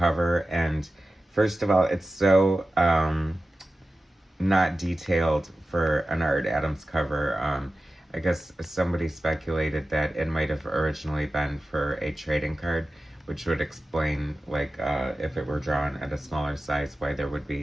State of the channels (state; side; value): normal; both; correlation 0.94